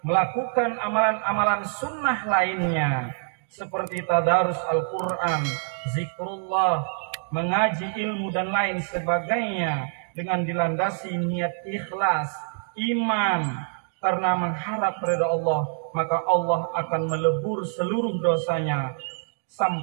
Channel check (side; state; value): left; silent; digital silence